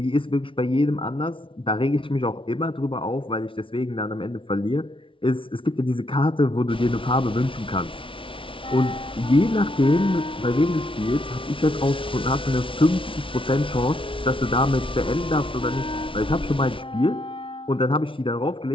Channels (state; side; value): late; right; 0.25 ms